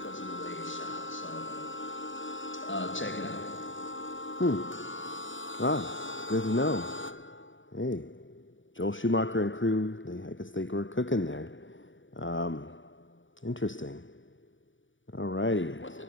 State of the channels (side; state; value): right; late; 0.56 ms